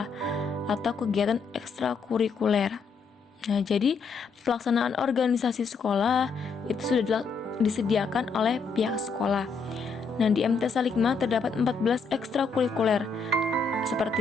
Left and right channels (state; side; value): quieter; right; 4.8 dB